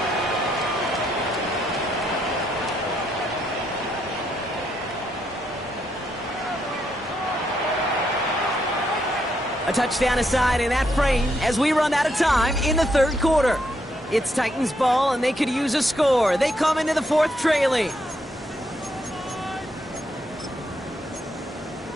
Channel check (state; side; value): normal; both; correlation 0.77